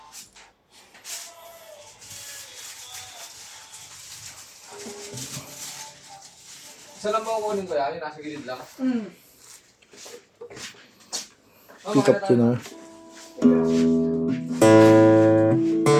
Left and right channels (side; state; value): both; identical; correlation 1.00